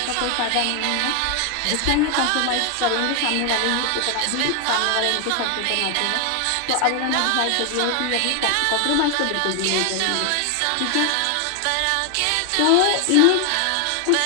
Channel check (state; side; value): different; both; correlation 0.00